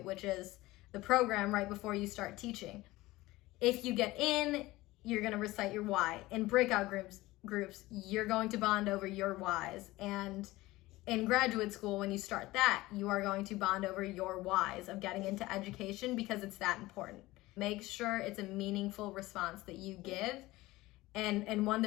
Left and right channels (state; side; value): quieter; right; 18.9 dB